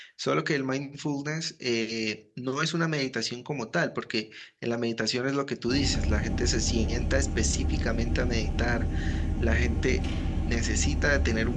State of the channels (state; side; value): identical; both; correlation 1.00